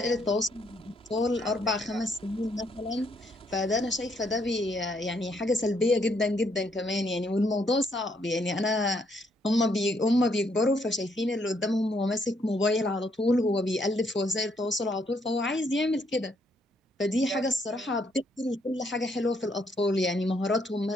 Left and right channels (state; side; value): normal; both; correlation 0.72